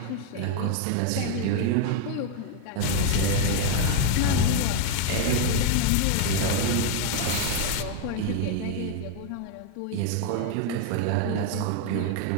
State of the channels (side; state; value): both; different; correlation 0.00